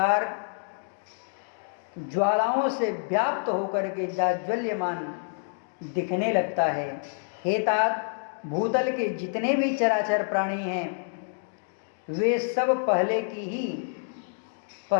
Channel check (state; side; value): silent; right; digital silence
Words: ज्वालाओं से व्याप्त होकर के जाज्वल्यमान दिखने लगता है। हे तात, भूतल के जितने भी चराचर प्राणी हैं वे सब पहले